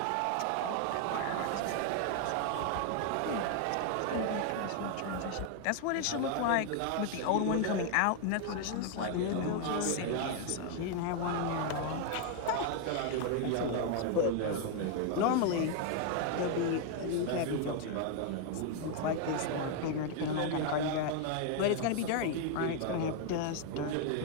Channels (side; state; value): both; different; correlation 0.00